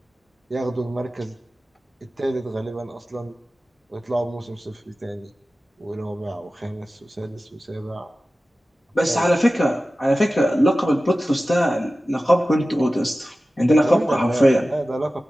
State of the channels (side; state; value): both; normal; correlation 0.95